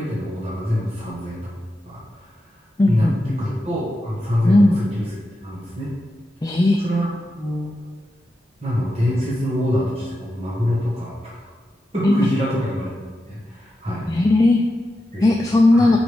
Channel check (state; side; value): normal; both; correlation 0.89